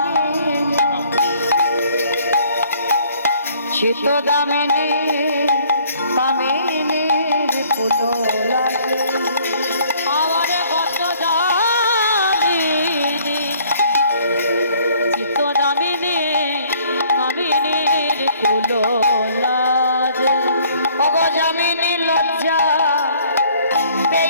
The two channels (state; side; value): inverted; both; correlation -0.59